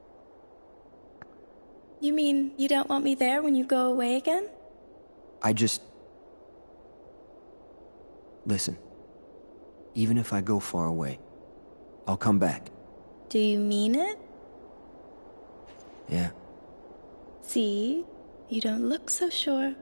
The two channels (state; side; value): inverted; both; correlation -1.00